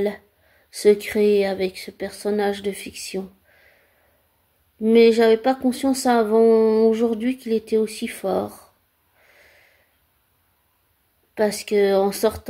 se créer avec ce personnage de fiction. Mais j'avais pas conscience avant aujourd'hui qu'il était aussi fort. Parce que en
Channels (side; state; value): both; identical; correlation 1.00